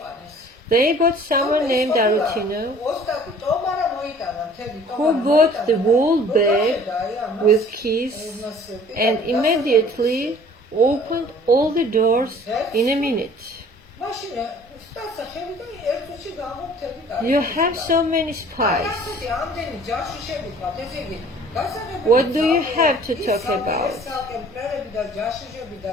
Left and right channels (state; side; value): normal; both; correlation 0.51